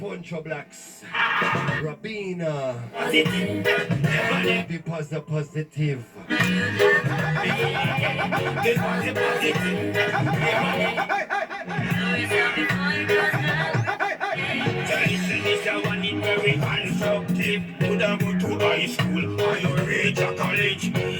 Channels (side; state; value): both; identical; correlation 1.00